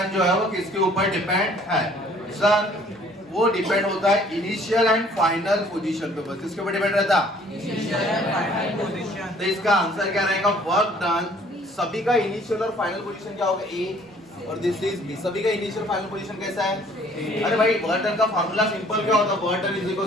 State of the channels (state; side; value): normal; both; correlation 0.57